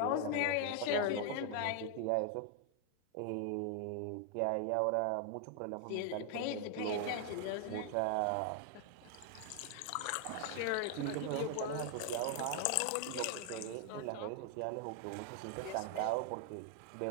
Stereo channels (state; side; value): different; both; correlation 0.00